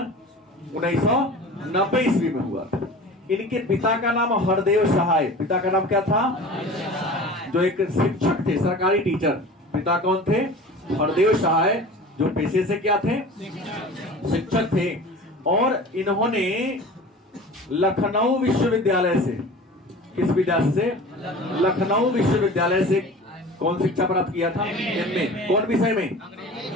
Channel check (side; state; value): both; normal; correlation 0.38